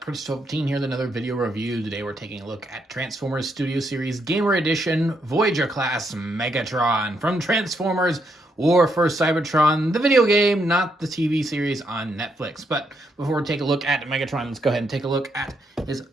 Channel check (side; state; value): both; normal; correlation 0.77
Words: Prince12 here with another video review. Today we're taking a look at Transformers Studio Series Gamer Edition Voyager class Megatron from Transformers War for Cybertron, the video game, not the TV series on Netflix. But before we take a look at Megatron, let's go ahead and take a look at his